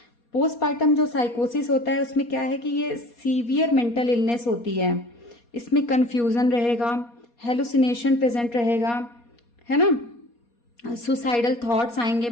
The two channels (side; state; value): right; late; 4.2 ms